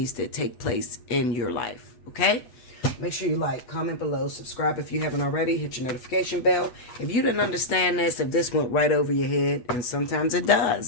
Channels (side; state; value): right; late; 8.2 ms